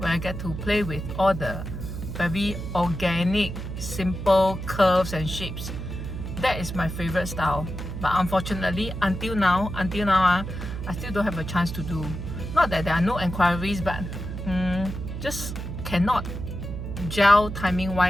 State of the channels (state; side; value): noise; right; hum, 6 dB below the sound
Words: I get to play with all the very organic, simple curves and shapes. That is my favorite style. But unfortunately, until now, I still don't have a chance to do. Not that there are no inquiries, but just cannot gel timing